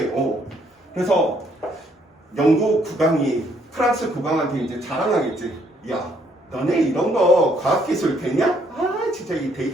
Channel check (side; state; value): both; normal; correlation 0.69